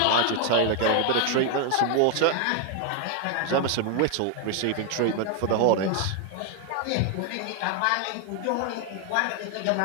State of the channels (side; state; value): both; different; correlation 0.01